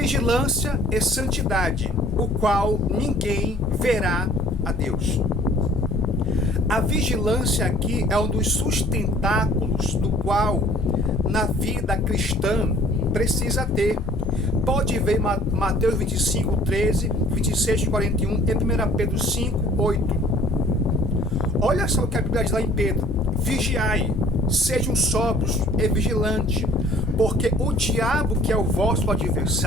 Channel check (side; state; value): both; normal; correlation 0.54